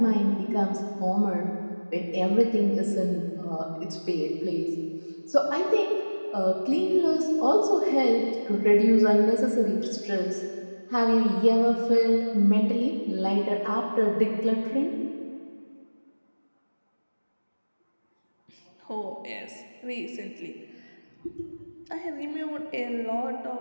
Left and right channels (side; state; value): both; inverted; correlation -1.00